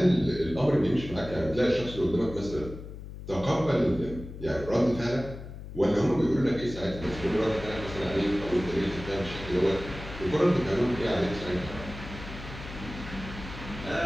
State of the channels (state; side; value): noise; left; hum, 12 dB below the sound